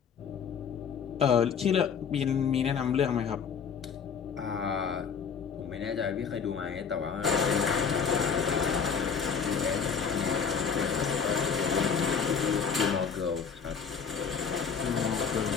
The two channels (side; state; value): right; quieter; 6.4 dB